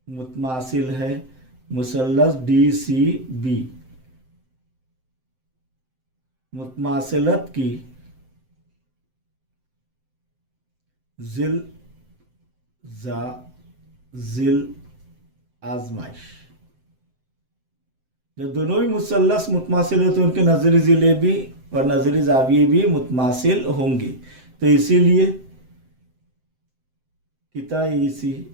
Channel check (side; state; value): left; late; 7.7 ms